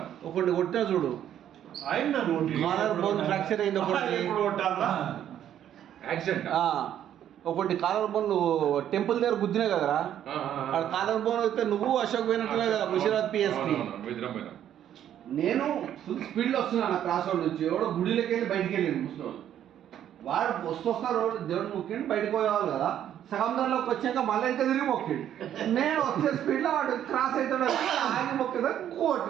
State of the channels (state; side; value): quieter; left; 10.6 dB